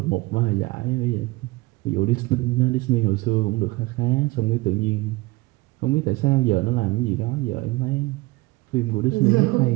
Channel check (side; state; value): left; quieter; 21.8 dB